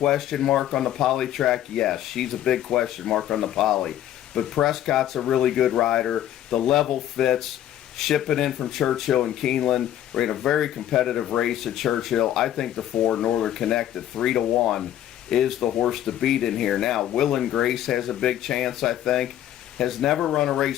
mark on the poly track? Yes, she's a big question mark on the poly. But Prescott's a really good rider. The level fits. Shipping in from Churchill and Keeneland. We're in a very competitive race at Churchill. I think the 4, Northern Connect, at 3-1, is the horse to beat in here. Now, Will and Grace has a big chance, I think. Has never run a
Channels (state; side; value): quieter; right; 11.7 dB